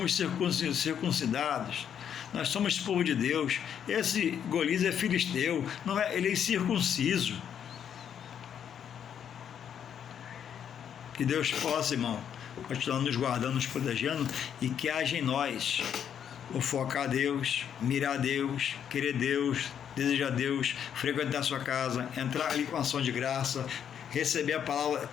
circuncidados, nós somos povo de Deus. Esse Golias é filisteu, não é, ele é circunciso. Que Deus possa, irmão, continuar nos guardando, nos protegendo, e que haja em nós o focar a Deus, mirar a Deus, querer Deus, desejar Deus, frequentar a sua casa, entrar ali com ação de graça, receber a palavra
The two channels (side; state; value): right; quieter; 8.7 dB